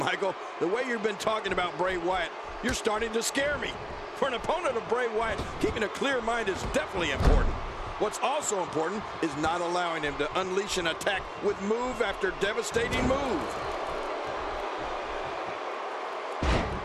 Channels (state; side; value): identical; both; correlation 1.00